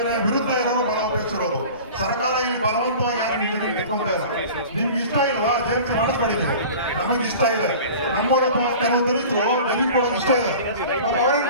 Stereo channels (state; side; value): inverted; both; correlation -0.40